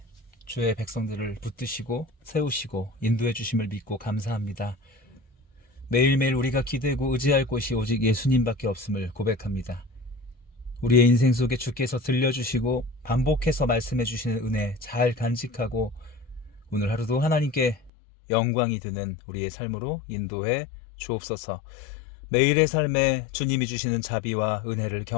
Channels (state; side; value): drops out; right; at 17.9 s